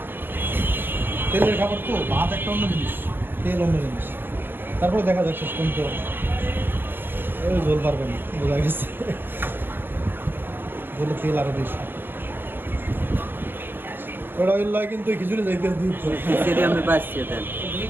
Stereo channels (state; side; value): late; left; 0.10 ms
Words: তেলের খাবার তো, ভাত একটা অন্য জিনিস, তেল অন্য জিনিস। তারপরে দেখা যাক শেষ পর্যন্ত ওই ঝোল পারবে না, বোঝা গেছে। ঝোলে তেল আরো বেশি। ওটা ওই লয় কিন্তু খিচুড়ি যাইতে দুধ সেটা আমি পাচ্ছি দেন।